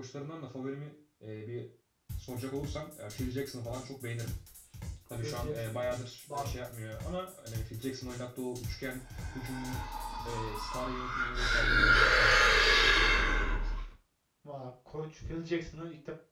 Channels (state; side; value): identical; both; correlation 1.00